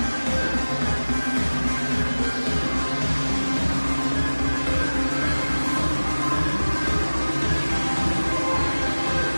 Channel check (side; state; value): both; inverted; correlation -1.00